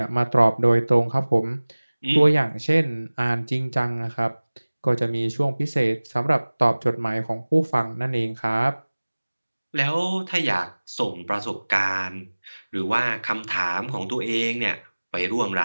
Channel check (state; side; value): inverted; both; correlation -1.00